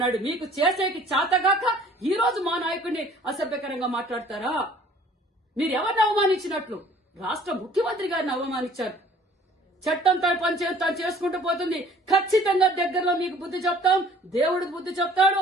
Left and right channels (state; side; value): normal; both; correlation 0.54